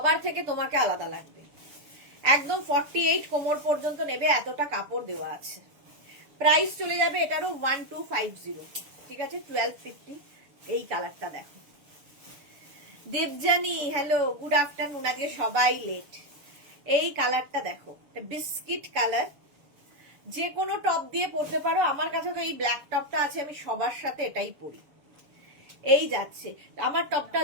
থেকে তোমাকে আলাদা লাগবে। একদম 48 কোমর পর্যন্ত নেবে, এতটা কাপড় দেওয়া আছে। প্রাইস চলে যাবে এটারও 1250, ঠিক আছে, 1250। এই কালারটা দেখো, দেবজানি হ্যালো, গুড আফটারনুন। আজকে সবাই লেট। এই কালারটা দেখো, বিস্কিট কালার, যে কোনো টপ দিয়ে পরতে পারো। আমার কাছে তো এই ব্ল্যাক টপটা আছে, আমি সবার সাথে এটাই পরি। এই যাচ্ছে আমার টপটা,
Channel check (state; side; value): late; left; 7.0 ms